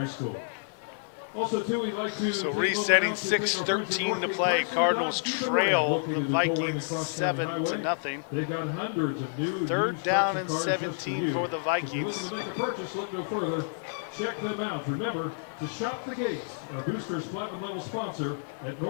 School. Also, too, we'd like to so resetting 6:13 to play. Cardinals trail the Vikings 7-0. 3rd down and 17 for the Vikings. Look no further. Check them out. Remember to shop the gate. Our Boosters Platinum level sponsor at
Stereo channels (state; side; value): silent; right; digital silence